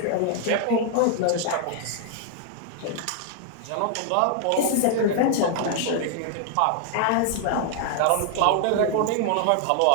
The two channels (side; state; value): both; different; correlation 0.00